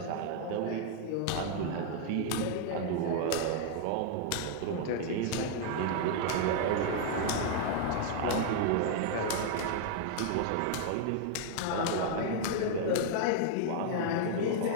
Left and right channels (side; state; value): both; different; correlation 0.00